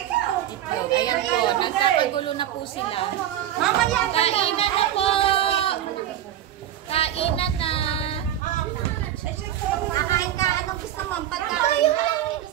itlog. Ayan po, nagkakagulo na po sila. Kainan na po! Kainan na! Nakain ka, anong gusto mo? Pagkain?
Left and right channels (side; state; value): left; quieter; 11.5 dB